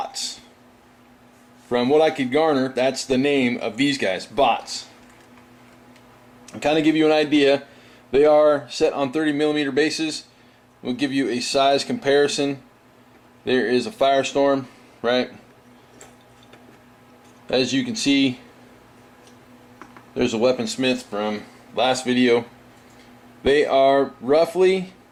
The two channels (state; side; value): identical; both; correlation 1.00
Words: From what I could garner, that's the name of these guys, bots. I'll kind of give you an idea. They are set on 30mm bases. We'll give you a size comparison. There is a firestorm, right? As you can see, there's a weaponsmith from last video. They are roughly